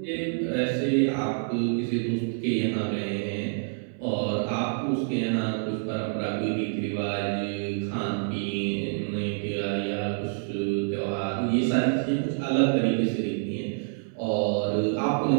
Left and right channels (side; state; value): left; silent; 60 dB below the other